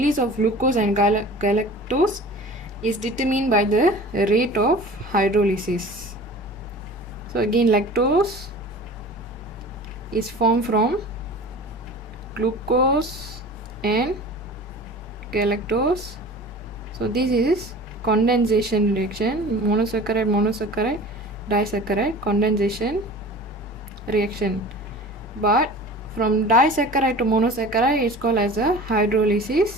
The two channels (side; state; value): both; normal; correlation 0.39